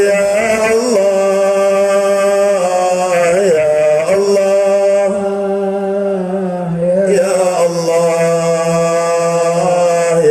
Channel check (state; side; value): identical; both; correlation 1.00